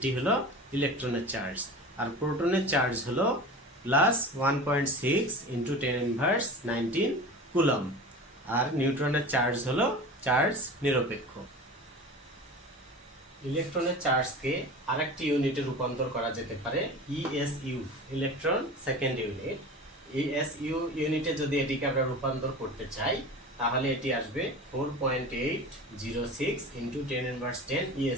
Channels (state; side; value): normal; both; correlation 0.34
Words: হলো ইলেকট্রনের চার্জ। আর প্রোটনের চার্জ হলো +1.6 ইন্টু 10⁻19 কুলম। আর নিউট্রনের চার্জ হলো চার্জ নিরপেক্ষ। ইলেকট্রনের চার্জকে আরেকটি ইউনিটে রূপান্তর করা যেতে পারে, ESU, electron second unit. ESU ইউনিটে যদি এটিকে আমরা রূপান্তর করতে চাই তাহলে এটি আসবে 4.806 ইন্টু 10⁻10